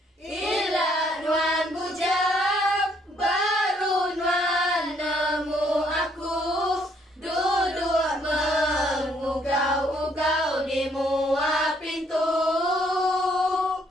Ilat nuan bujang, baru nuan nemu aku. Duduk mengugau-ugau di muat pintu.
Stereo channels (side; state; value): both; normal; correlation 0.68